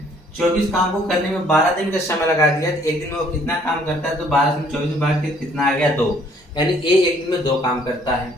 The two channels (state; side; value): normal; both; correlation 0.61